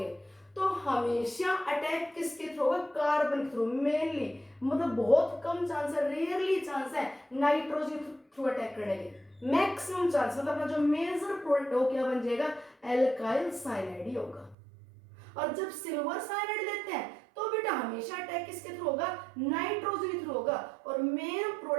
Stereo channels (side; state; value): left; drops out; at 14.6 s